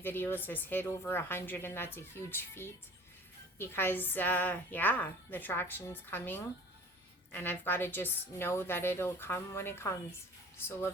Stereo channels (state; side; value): normal; both; correlation 0.46